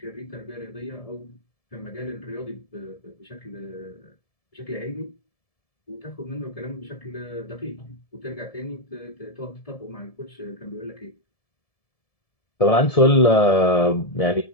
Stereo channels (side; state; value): right; late; 1.7 ms